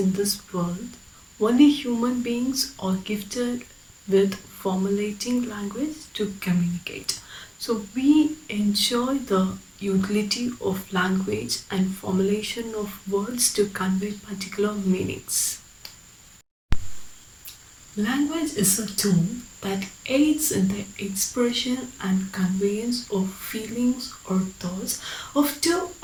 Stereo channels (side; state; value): both; identical; correlation 1.00